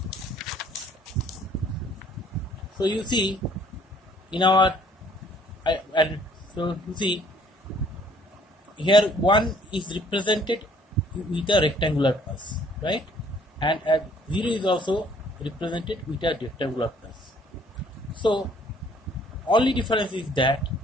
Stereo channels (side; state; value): both; normal; correlation 0.60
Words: So you see in our here 1 is represented with a rectangular pulse, right? And 0 is also represented with a rectangular pulse. So only difference is that